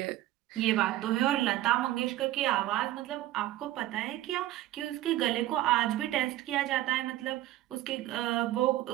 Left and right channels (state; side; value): quieter; left; 15.0 dB